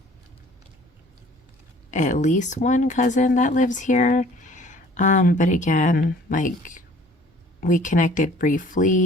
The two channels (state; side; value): normal; both; correlation 0.53